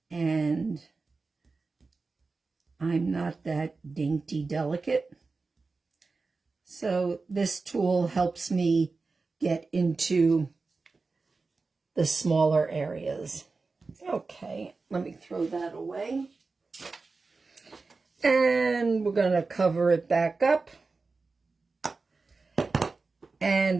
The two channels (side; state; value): left; quieter; 4.0 dB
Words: and I'm not that dainty delicate. So this tool helps me get into the smaller areas. Okay, let me throw that away. And we're going to cover it back up.